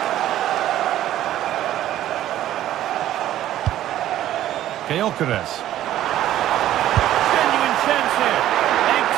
Gyökeres. Genuine chance here.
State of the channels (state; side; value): quieter; left; 12.9 dB